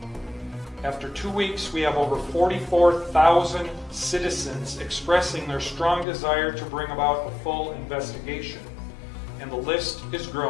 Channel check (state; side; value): drops out; right; at 6.1 s